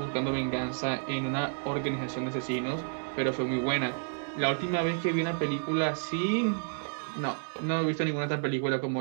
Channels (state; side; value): silent; left; 57 dB below the other